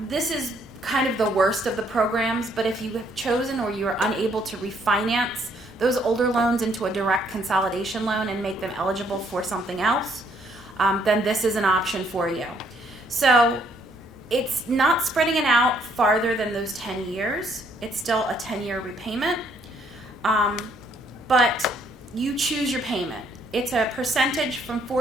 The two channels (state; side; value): normal; both; correlation 0.68